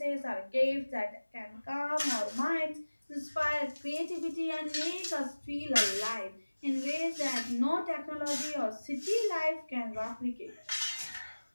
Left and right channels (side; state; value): both; inverted; correlation -1.00